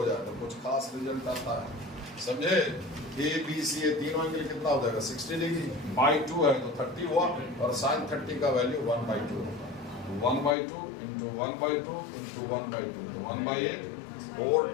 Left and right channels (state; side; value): drops out; right; at 10.6 s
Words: जाए तो कुछ खास रिजल्ट आता है, समझे। ए बी सी ये तीनों एंगल कितना हो जाएगा, 60 डिग्री, बाई 2 है तो 30 हुआ, और साइन 30 का वैल्यू 1 बाई 2 होगा, 1 by 2 into 1 by 2 into 1 by 2, 1 by 8, 4